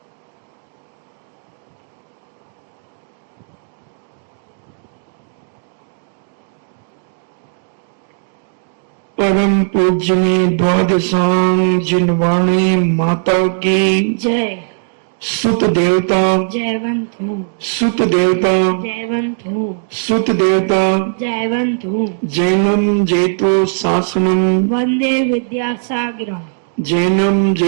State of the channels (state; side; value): silent; left; digital silence